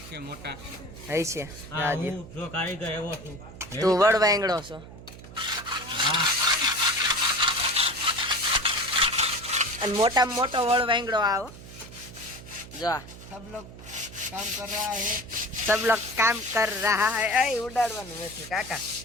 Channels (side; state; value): right; noise; hum, 16 dB below the sound